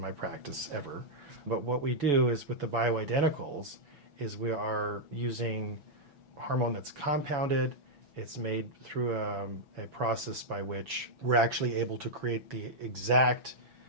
practice ever. But what we do is with the bioidenticals is we are using hormone that's compounded. It's made through a process by which we're actually able to create the exact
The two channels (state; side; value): late; left; 6.0 ms